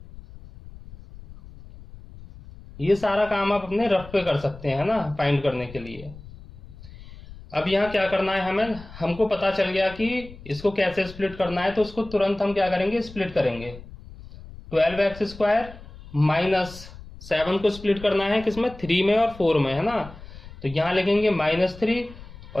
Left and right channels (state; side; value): noise; left; rumble, 17 dB below the sound